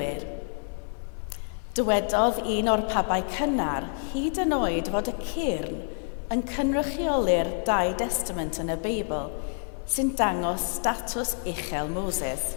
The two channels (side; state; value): right; silent; 57 dB below the other